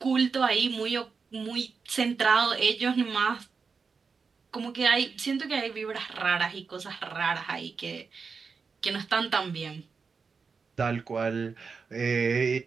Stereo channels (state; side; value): quieter; left; 5.2 dB